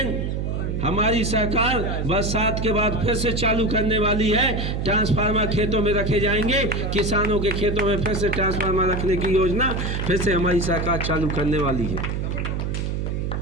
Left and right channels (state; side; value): noise; right; hum, 1 dB below the sound